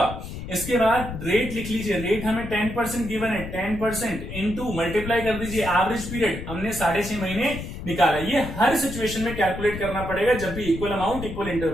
इसके बाद रेट लिख लीजिए, रेट हमें 10% गिवन है, 10% इंटू मल्टीप्लाई कर दीजिए एवरेज पीरियड, हमने 6.5 महीने निकाला। ये हर सिचुएशन में कैलकुलेट करना पड़ेगा जब भी equal amount equal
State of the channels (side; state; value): left; noise; rumble, 9 dB below the sound